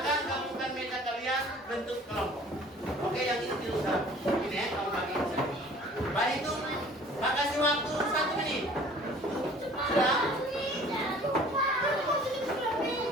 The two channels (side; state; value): both; normal; correlation 0.50